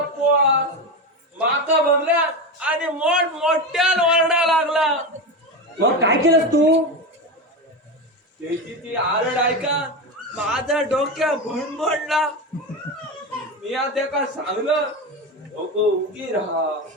माका बघल्या आणि मोठ्यानं ओरडा लागला. मग काय केलंस तू? त्याची ती आरड ऐका माझ्या डोक्या भणभणला. मी आता का सांगलं, नको उगी राहा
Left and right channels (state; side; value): normal; both; correlation 0.18